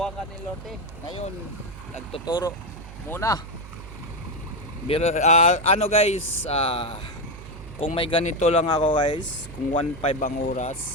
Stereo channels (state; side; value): noise; right; hum, 14 dB below the sound